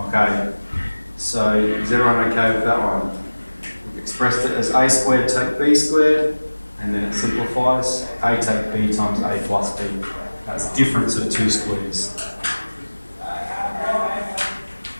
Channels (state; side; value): inverted; both; correlation -1.00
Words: So is everyone okay with that one? We've expressed it as a squared take b squared, and then it simplifies a take b times a plus b. That's difference of 2 squares.